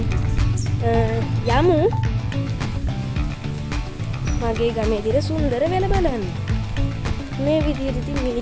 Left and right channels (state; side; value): identical; both; correlation 1.00